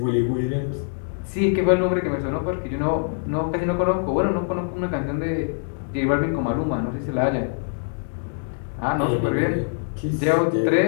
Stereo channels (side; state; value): right; silent; digital silence